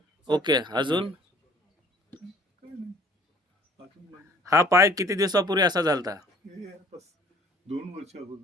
ओके, अजून? काय नाही. अजून म्हणजे हा पाय किती दिवसापूर्वी असा झालता? हे बस 2 वर्ष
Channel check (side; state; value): both; normal; correlation 0.54